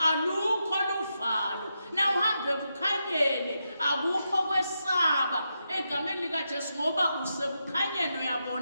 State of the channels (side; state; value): both; inverted; correlation -0.85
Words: alukho luvalo, nawe uhambe ebukhanyeni akukho kwesaba egameni likaJesu ngoba usekukhanyeni